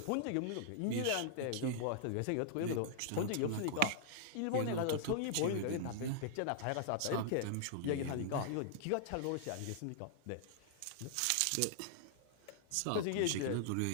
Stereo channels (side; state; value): both; different; correlation -0.01